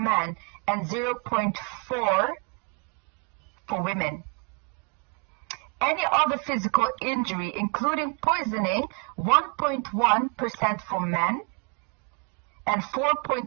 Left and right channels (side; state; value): left; quieter; 32.7 dB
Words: and 0.4 for women. Any other physical injury, including poisoning, 1.1% for men and